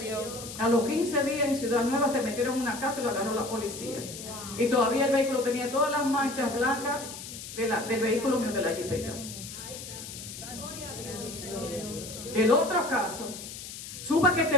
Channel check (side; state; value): left; noise; hiss, 11 dB below the sound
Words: A los 15 días en Ciudad Nueva se metieron en una casa y lo agarró la policía. Y todavía el vehículo tenía todas las manchas blancas del vehículo mío, de la jipeta. El otro caso, supe que